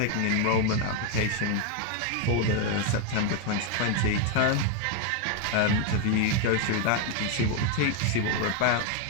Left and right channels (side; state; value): both; different; correlation 0.01